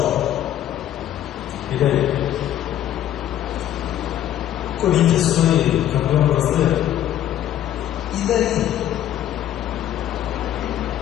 E daí? Corinthians foi campeão brasileiro. E daí?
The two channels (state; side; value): quieter; right; 11.5 dB